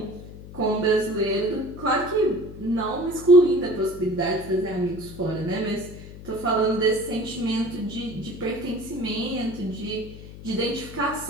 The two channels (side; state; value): left; noise; hum, 15 dB below the sound